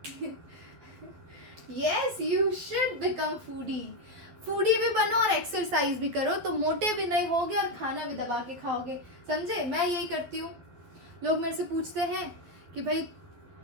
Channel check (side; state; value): left; late; 12 ms